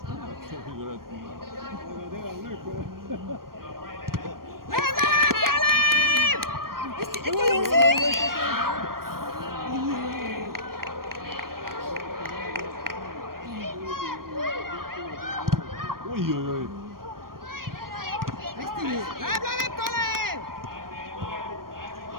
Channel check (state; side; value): late; left; 0.92 ms